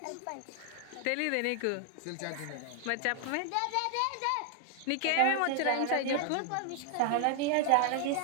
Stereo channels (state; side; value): different; both; correlation 0.00